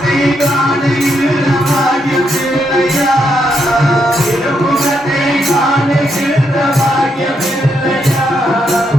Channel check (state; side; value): normal; both; correlation 0.79